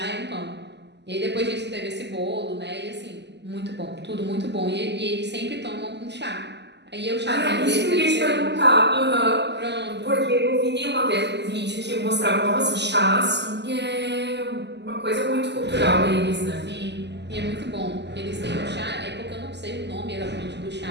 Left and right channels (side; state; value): left; late; 0.50 ms